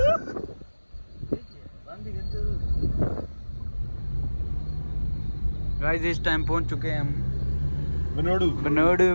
गाइस इस टाइम पहुंच चुके हैं हम बनोडू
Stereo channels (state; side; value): inverted; both; correlation -1.00